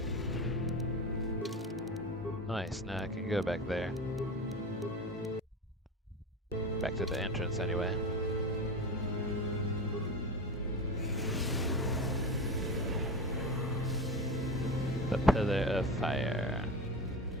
Nice, now I can go back there. Back to the entrance anyway. The Pillar of Fire.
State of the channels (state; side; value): normal; both; correlation 0.26